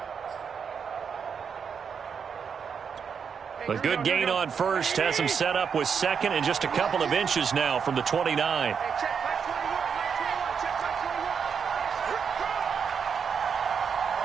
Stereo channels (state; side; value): quieter; left; 6.6 dB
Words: A good gain on first has him set up with second and just a couple of inches now from the 29.